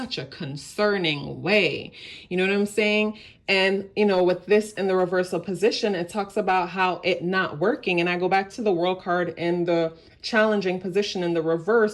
a concerning way. You know what I'm saying? And, you know, with this in the reversal position, it talks about how it not working. And I go back to the World card in the challenging position in the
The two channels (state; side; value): identical; both; correlation 1.00